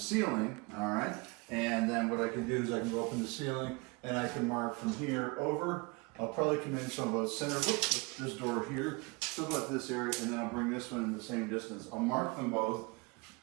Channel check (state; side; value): quieter; left; 27.7 dB